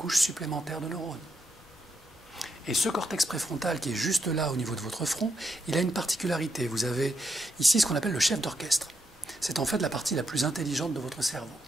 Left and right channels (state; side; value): normal; both; correlation 0.80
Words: supplémentaire de neurones. Et ce cortex préfrontal qui est juste là au niveau de votre front, il a une particularité. Vous avez ici ce qu'on appelle le chef d'orchestre. C'est en fait la partie la plus intelligente de votre cerveau.